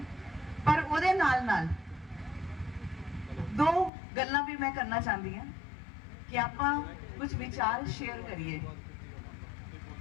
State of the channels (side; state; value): right; drops out; at 3.9 s